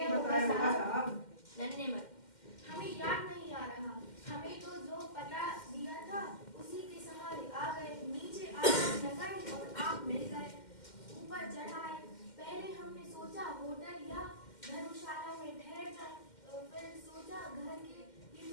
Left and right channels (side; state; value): right; late; 2.1 ms